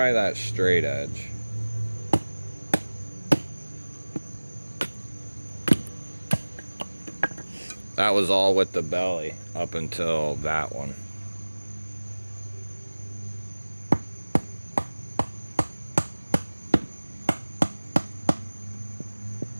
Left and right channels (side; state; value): both; inverted; correlation -1.00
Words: that straight edge. That was all with the belly up until that one.